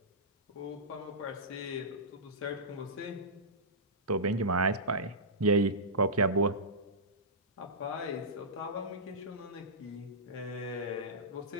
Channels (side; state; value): both; normal; correlation -0.17